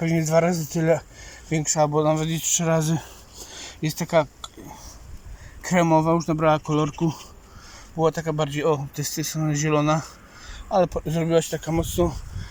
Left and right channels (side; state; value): both; identical; correlation 1.00